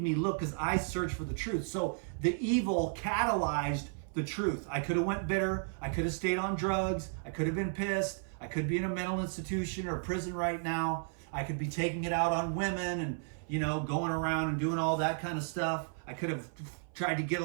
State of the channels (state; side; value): silent; left; 55 dB below the other